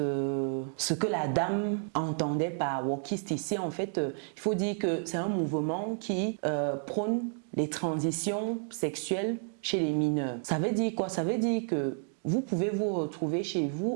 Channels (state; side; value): silent; left; 57 dB below the other